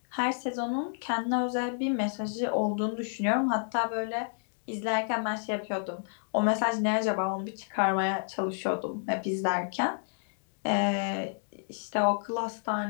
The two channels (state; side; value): silent; right; digital silence